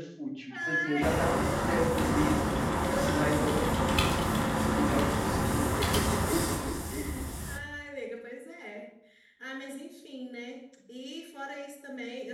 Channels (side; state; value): both; identical; correlation 1.00